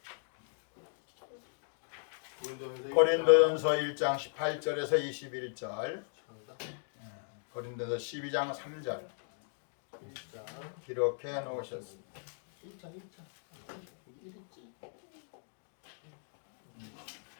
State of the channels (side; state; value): right; silent; 53 dB below the other